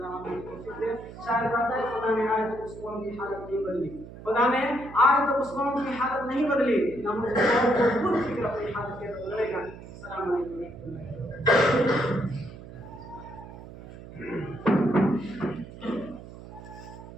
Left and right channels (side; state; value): right; noise; hum, 15 dB below the sound